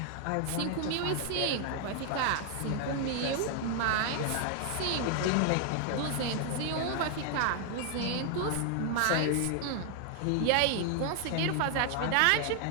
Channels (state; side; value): different; both; correlation 0.00